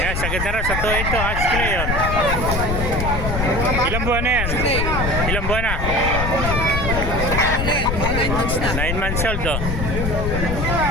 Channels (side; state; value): left; noise; rumble, 1 dB below the sound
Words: sagad na rin sa to ito, hot straight yun. Ilang buwan na yan? Ilang buwan na? 9 months old oh.